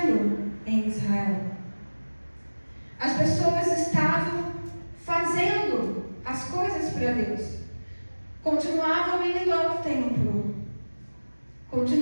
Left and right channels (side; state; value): both; inverted; correlation -1.00